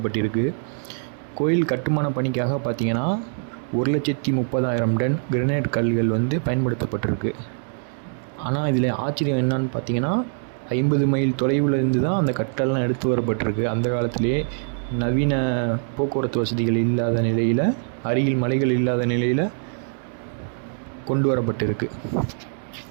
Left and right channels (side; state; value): left; silent; 63 dB below the other